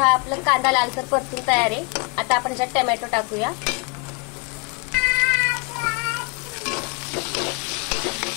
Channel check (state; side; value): quieter; right; 32.3 dB